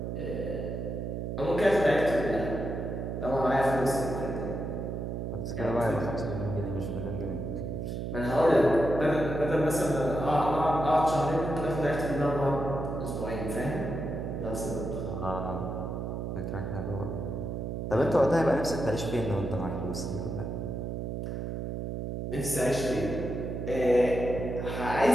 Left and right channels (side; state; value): right; noise; hum, 4 dB below the sound